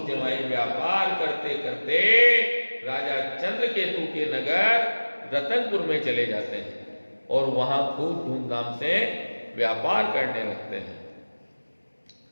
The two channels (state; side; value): inverted; both; correlation -1.00